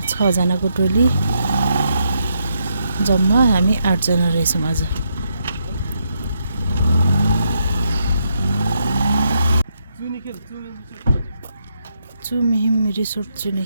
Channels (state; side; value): inverted; both; correlation -0.79